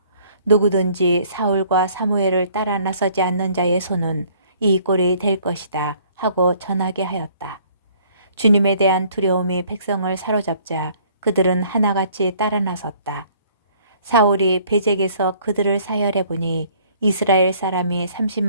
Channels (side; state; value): both; inverted; correlation -0.58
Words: 누구든지 사울과 사무엘을 따라 나서지 않는 자의 손은 이 꼴이 될 것이다 하고 전하게 하였다. 주님에 대한 두려움이 백성을 사로잡자 그들은 하나같이 따라 나섰다. 사울이 베잭에서 그들을 사열해 보니 이스라엘 사람이